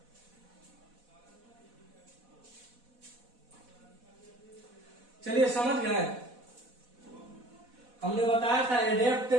चलिए समझ गए, हमने बताया था एडेप्ट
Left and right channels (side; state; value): left; late; 4.1 ms